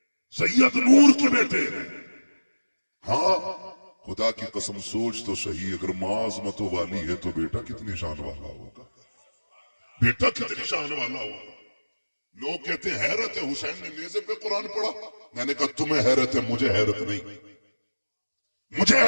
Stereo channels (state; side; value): inverted; both; correlation -1.00